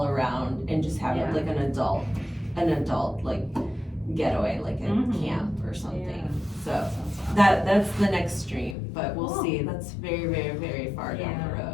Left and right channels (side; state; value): right; drops out; at 8.8 s